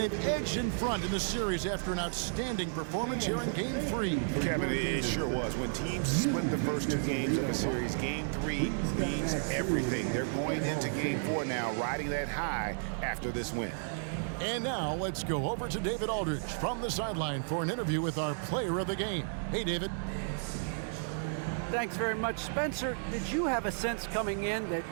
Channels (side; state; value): left; silent; digital silence